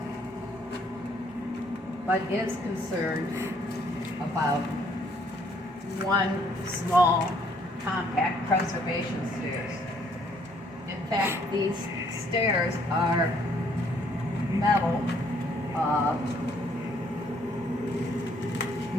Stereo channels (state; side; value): normal; both; correlation 0.65